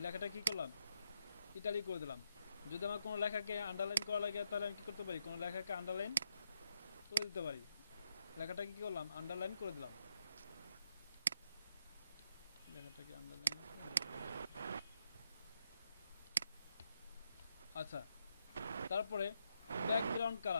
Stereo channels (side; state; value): both; inverted; correlation -0.79